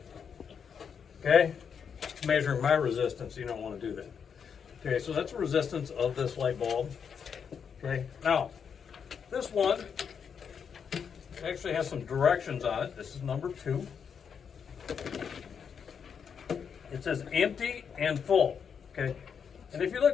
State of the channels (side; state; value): right; quieter; 6.9 dB